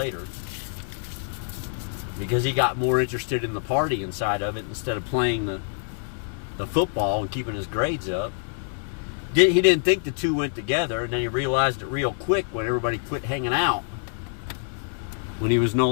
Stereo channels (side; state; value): right; silent; 61 dB below the other